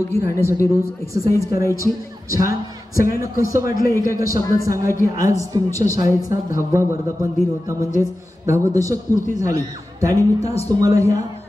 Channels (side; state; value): both; normal; correlation 0.94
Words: राहण्यासाठी रोज एक्सरसाइज करायची छान सगळ्यांना कसं वाटलं एका एका शब्दात सांगा की आज तुमच्या शाळेचा 10वा वर्धापन दिन होता म्हणजेच 10वं दशक पूर्ती झाली त्यानिमित्त आज तुम्हाला ह्या